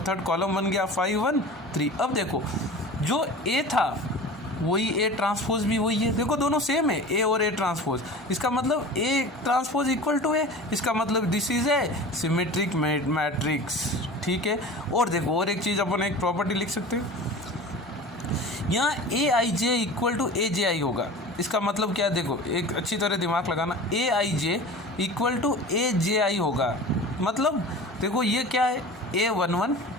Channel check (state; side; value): normal; both; correlation 0.37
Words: थर्ड कॉलम बन गया 5 1 3। अब देखो जो ए था वही ए ट्रांसपोज भी वही है, देखो दोनों सेम है, ए और ए ट्रांसपोज। इसका मतलब ए ट्रांसपोज इक्वल टू ए, इसका मतलब this is a symmetric matrix. ठीक है। और देखो और एक चीज़ अपन एक प्रॉपर्टी लिख सकते हैं, यहाँ ए I J equal to A J आई होगा। इसका मतलब क्या है, देखो एक अच्छी तरह दिमाग लगाना, ए I J equal to A J आई होगा। मतलब देखो ये क्या है, ए 1 1,